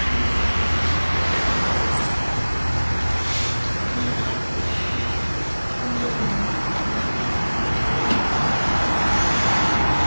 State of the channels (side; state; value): both; inverted; correlation -1.00